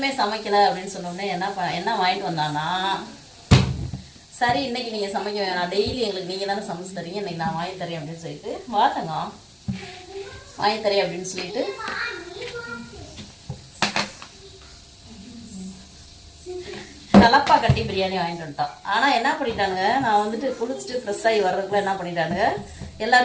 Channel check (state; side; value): identical; both; correlation 1.00